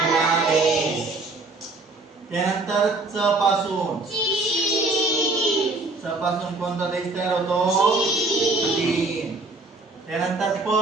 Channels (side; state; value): left; quieter; 3.2 dB